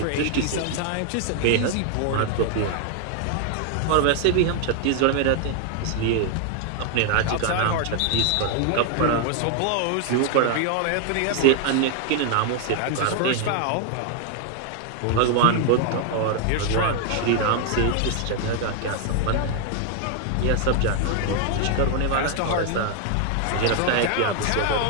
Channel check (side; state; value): both; different; correlation 0.00